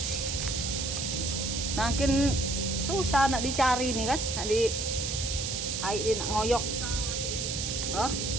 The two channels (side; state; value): right; noise; hiss, 2 dB below the sound